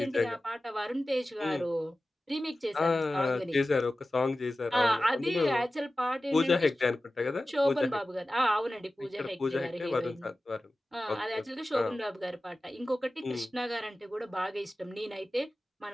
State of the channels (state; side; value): normal; both; correlation 0.95